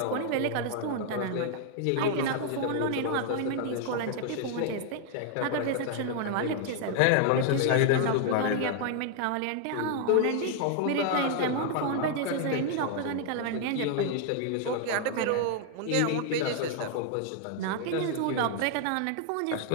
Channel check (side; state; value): both; different; correlation 0.00